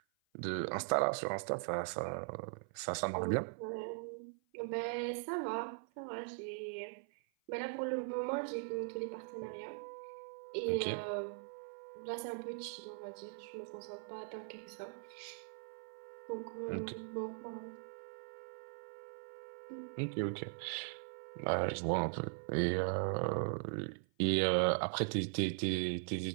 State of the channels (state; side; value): silent; left; 51 dB below the other